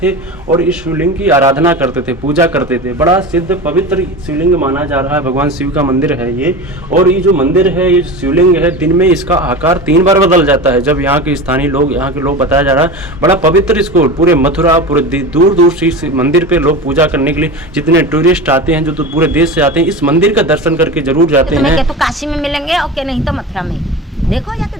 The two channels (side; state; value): both; normal; correlation 0.29